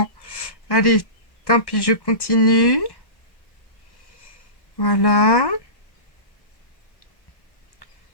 Allez, tant pis, je continue. Voilà.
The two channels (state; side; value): late; right; 1.1 ms